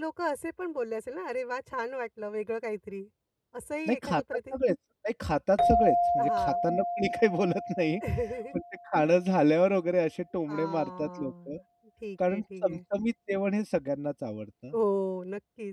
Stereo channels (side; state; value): both; identical; correlation 1.00